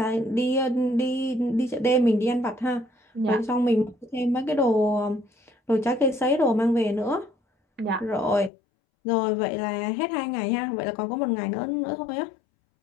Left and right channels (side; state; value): right; drops out; at 8.5 s